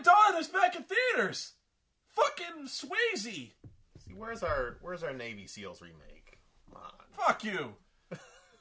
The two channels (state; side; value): identical; both; correlation 1.00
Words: Dawn is back in theaters. Fucking Swayze. See, where's our Navy SEALs remake? Come on. Fuck you.